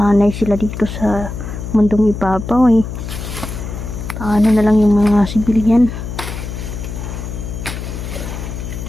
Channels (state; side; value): noise; left; hum, 7 dB below the sound